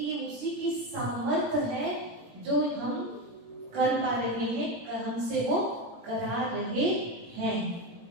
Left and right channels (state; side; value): late; left; 17 ms